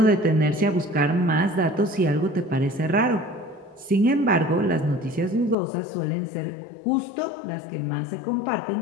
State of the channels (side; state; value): right; drops out; at 5.6 s